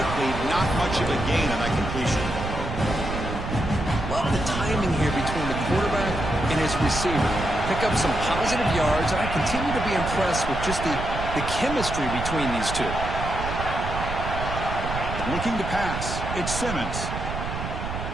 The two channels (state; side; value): noise; right; rumble, 6 dB below the sound